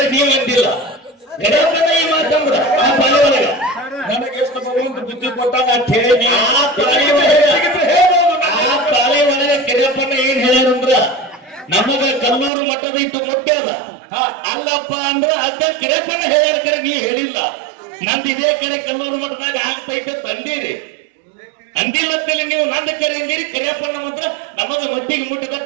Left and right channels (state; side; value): drops out; left; at 12.5 s